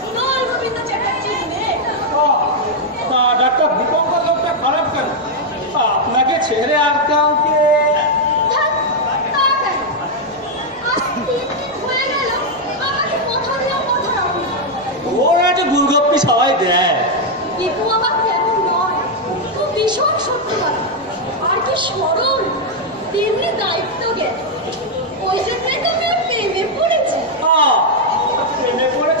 Dol Gobinda চ্যাটার্জির মেয়ে। তা ডাক্তার দীপঙ্কর লোকটা খারাপ কেন? আপনাকে ছেড়ে আর কাউকে? ধ্যাৎ, তা কেন? আজ 3 দিন হয়ে গেল, আমাকে কথা দিয়েও কথা রাখুন। ওরা একটা গুলগপ্পি সবাই দেয়। দীপু আমার তেমন নয়, ও ভীষণ সত্যবাদী, আর কি সরল, তেমনি দায়িত্ব জ্ঞান। ওই জন্যই তো আমি ওর প্রেমে পড়েছি। প্রেমে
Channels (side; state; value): both; normal; correlation 0.00